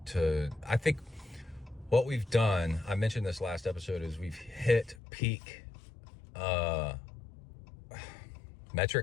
I think what we've done, I mentioned this last episode, is we've hit peak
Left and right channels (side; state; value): right; drops out; at 5.0 s